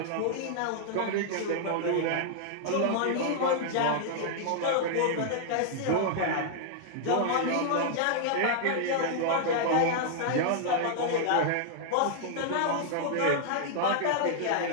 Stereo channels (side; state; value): both; different; correlation -0.01